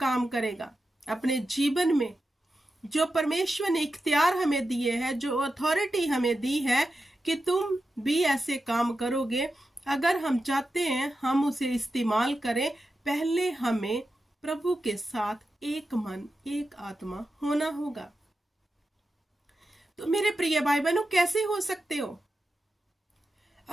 करेगा, अपने जीवन में जो परमेश्वर ने इख्तियार हमें दिए हैं, जो अथॉरिटी हमें दी है कि तुम भी ऐसे काम करोगे, अगर हम चाहते हैं हम उसे इस्तेमाल करें, पहले हमें प्रभु के साथ एक मन एक आत्मा होना होगा। तो मेरे प्रिय भाई बहनों, कैसे हो सकते हो?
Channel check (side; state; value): both; normal; correlation 0.90